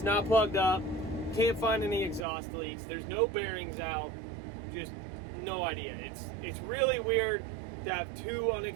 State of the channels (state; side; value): drops out; left; at 2.2 s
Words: not plugged up. Can't find any exhaust leaks. There's no bearings out. Just no idea. It's really weird to have two